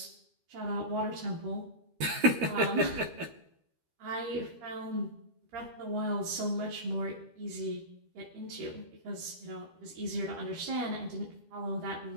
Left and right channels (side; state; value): left; late; 12 ms